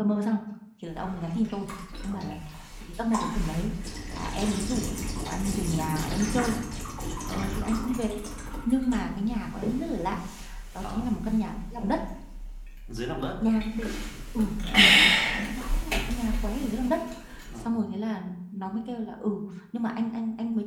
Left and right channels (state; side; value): identical; both; correlation 1.00